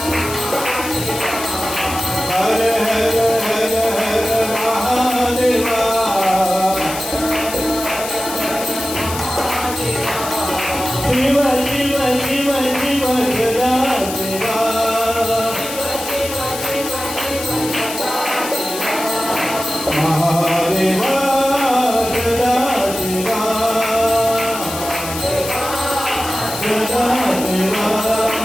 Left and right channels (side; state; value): left; noise; hiss, 9 dB below the sound